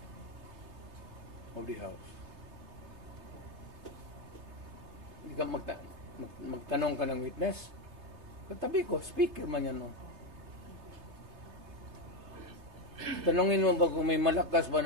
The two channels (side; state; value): left; late; 3.3 ms